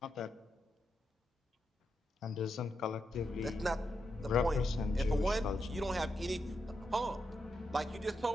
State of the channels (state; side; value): normal; both; correlation 0.85